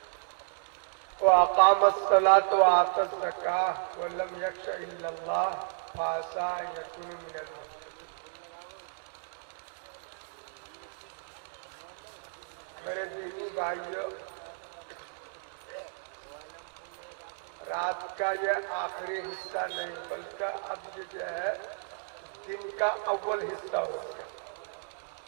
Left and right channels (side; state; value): left; silent; digital silence